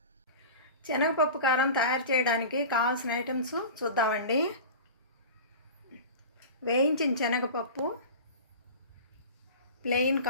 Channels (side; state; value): both; inverted; correlation -0.34